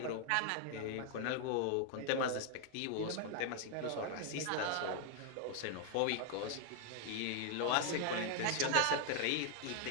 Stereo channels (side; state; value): both; different; correlation 0.00